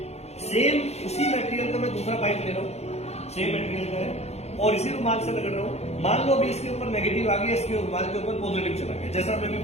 सेम उसी मटेरियल का मैं दूसरा पाइप ले रहा हूँ, सेम मटेरियल का है और इसी रुमाल से रगड़ रहा हूँ। मान लो अभी इसके ऊपर नेगेटिव आ गया, इसके रुमाल के ऊपर पॉजिटिव चला गया, जैसा मैं भी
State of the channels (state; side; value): late; right; 0.31 ms